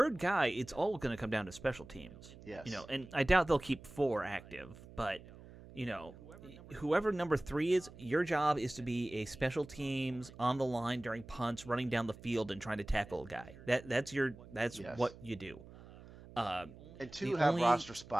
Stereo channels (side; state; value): right; noise; hum, 18 dB below the sound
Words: guy, it's all going to come down to special teams. Yes. And I doubt they'll keep 4 active, but, whoever number 3 is, your job is to be a special teams on the line during punts, running down the field and trying to tackle a guy. That's what you do. And 2 have roster